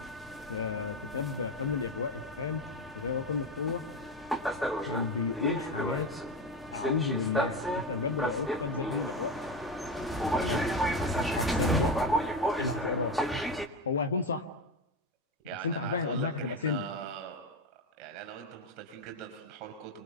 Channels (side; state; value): both; normal; correlation 0.17